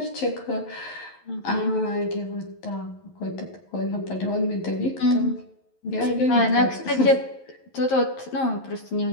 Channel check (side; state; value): right; late; 11 ms